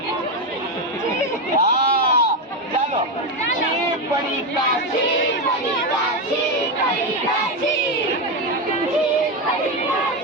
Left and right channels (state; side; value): normal; both; correlation 0.11